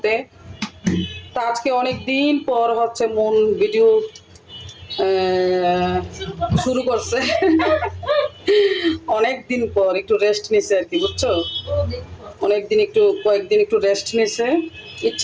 তা আজকে অনেক দিন পর হচ্ছে মন ভিডিও শুরু করছে। অনেক দিন পর একটু রেস্ট নিছে আর কি, বুঝছো? অনেকদিন একটু কয়েকদিন একটু রেস্ট নিছে,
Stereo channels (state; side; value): identical; both; correlation 1.00